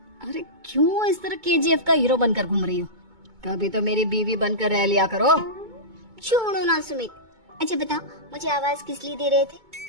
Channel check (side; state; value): left; late; 2.2 ms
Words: अरे क्यों इस तरह केजीएफ का हीरो बनकर घूम रही हो? कभी तो मेरी बीवी बनकर रह लिया करो। छोड़ो ना सुमित। अच्छा बताओ, मुझे आवाज किस लिए दे रहे थे?